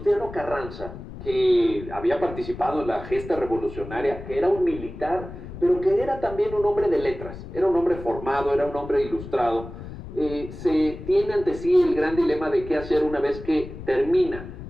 Carranza, que había participado en la gesta revolucionaria, que era un militar, pero que era también un hombre de letras, era un hombre formado, era un hombre ilustrado. Se tiene ante sí el gran dilema de qué hacer una vez que termina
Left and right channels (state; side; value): noise; left; rumble, 12 dB below the sound